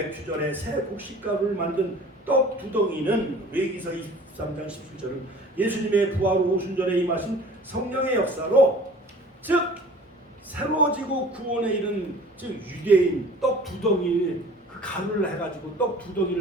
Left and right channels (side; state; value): both; normal; correlation 0.46